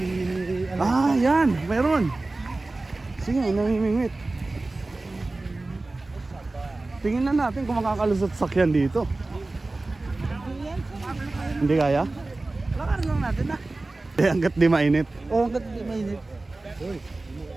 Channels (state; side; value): quieter; left; 3.1 dB